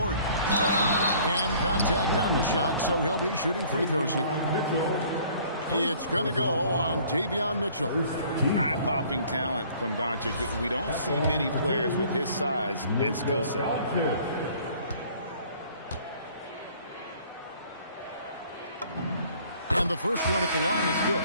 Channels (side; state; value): both; inverted; correlation -0.55